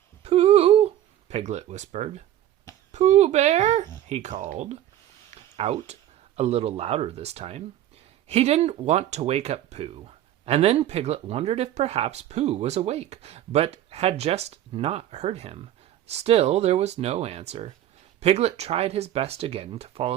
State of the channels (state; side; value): quieter; left; 12.2 dB